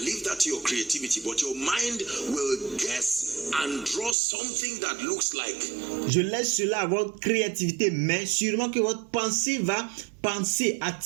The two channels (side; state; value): left; drops out; at 4.2 s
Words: leave that to your creativity, but your mind will guess and draw something that looks like. Je laisse cela à votre créativité, mais sûrement que votre pensée va penser